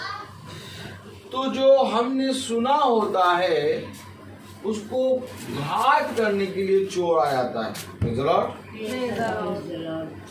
तो जो हमने सुना होता है उसको घात करने के लिए चोर आ जाता है।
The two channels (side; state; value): both; identical; correlation 1.00